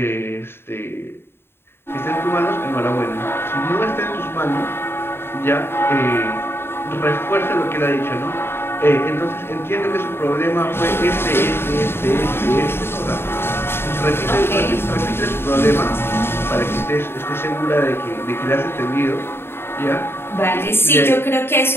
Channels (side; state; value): right; late; 0.11 ms